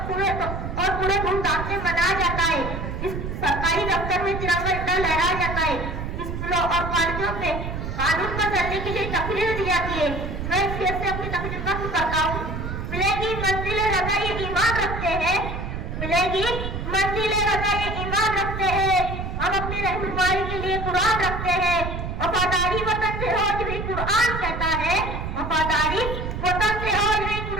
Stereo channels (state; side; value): noise; right; rumble, 5 dB below the sound